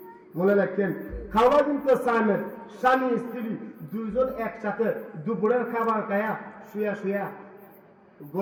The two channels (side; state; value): both; identical; correlation 1.00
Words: মনে রাখেন। খাওয়া কিন্তু সামেত, স্বামী স্ত্রী দুইজন একসাথে দুপুরের খাবার খায়া শুয়া শুয়া